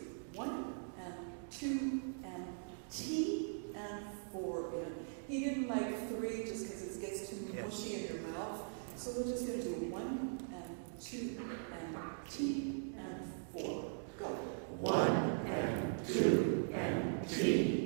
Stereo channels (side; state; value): left; silent; digital silence